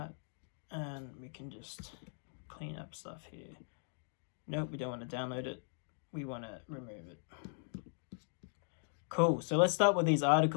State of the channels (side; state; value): right; silent; digital silence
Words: And we can just clean up stuff here. Nope, we don't want to download it. We want to remove it. Cool, so let's start with these